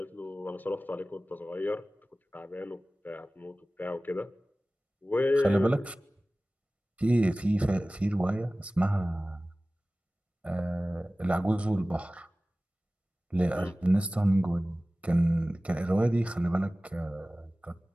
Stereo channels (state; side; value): normal; both; correlation 0.97